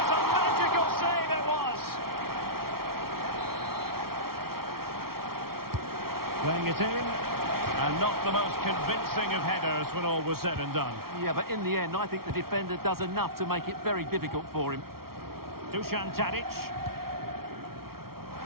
a magical save it was! Playing it in. And not the most convincing of headers when all was said and done. Yeah, but in the end, I think the defender does enough to make it very difficult for him. Dusan Tadic.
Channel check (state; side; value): late; left; 0.94 ms